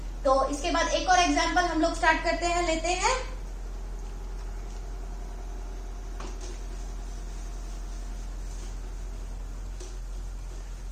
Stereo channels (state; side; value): identical; both; correlation 1.00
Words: तो इसके बाद एक और एग्जांपल हम लोग स्टार्ट करते हैं, लेते हैं।